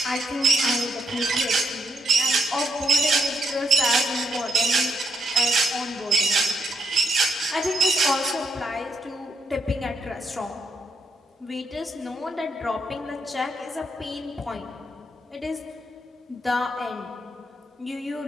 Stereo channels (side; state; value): both; normal; correlation 0.77